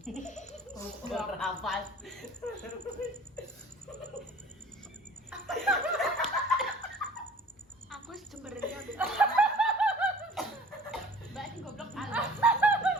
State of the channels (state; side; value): normal; both; correlation 0.47